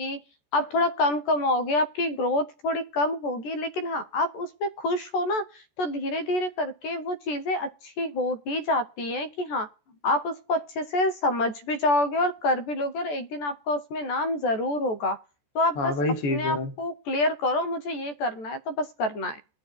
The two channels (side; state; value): right; late; 14 ms